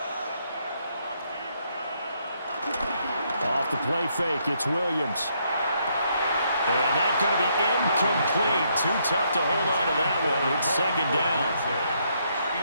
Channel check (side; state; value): both; inverted; correlation -0.73